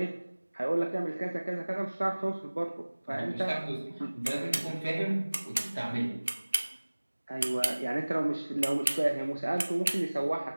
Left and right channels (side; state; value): both; inverted; correlation -1.00